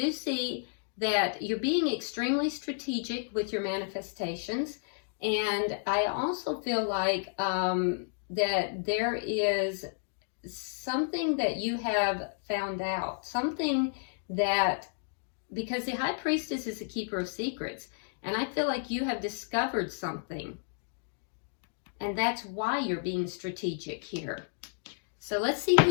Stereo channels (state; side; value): silent; right; digital silence